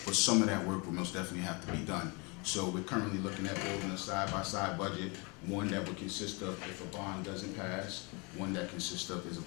but some of that work will most definitely have to be done. So we're currently looking at building a side-by-side budget, one that would consist of if a bond doesn't pass, one that consists of is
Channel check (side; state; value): right; quieter; 30.1 dB